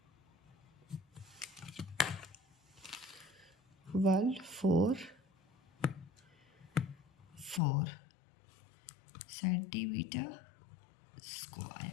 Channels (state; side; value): drops out; right; at 7.6 s